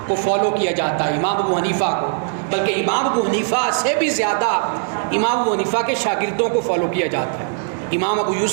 کو فالو کیا جاتا ہے، امام ابو حنیفہ کو، بلکہ امام ابو حنیفہ سے بھی زیادہ امام ابو حنیفہ کے شاگردوں کو فالو کیا جاتا ہے، امام ابو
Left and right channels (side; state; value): left; silent; digital silence